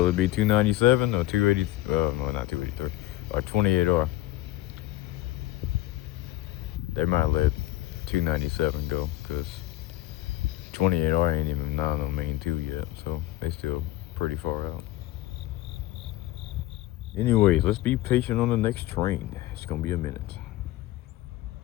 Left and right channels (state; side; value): quieter; right; 16.2 dB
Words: it be 297 or 280? No, not 283. Or 28R. They might let 297 go because 28R ain't even not on main 2 yet, so they still pretty far out. Anyways, let's be patient on the next train. It's gonna be a minute.